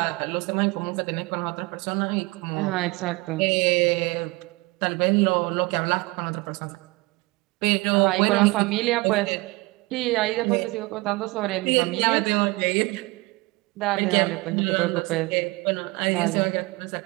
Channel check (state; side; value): quieter; left; 23.9 dB